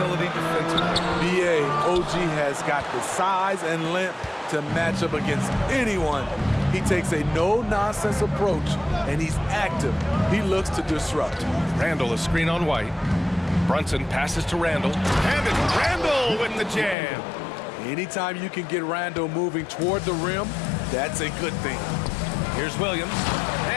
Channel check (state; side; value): drops out; right; at 16.9 s